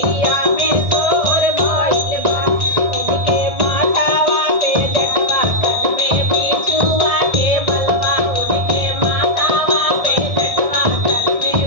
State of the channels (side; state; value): left; late; 1.7 ms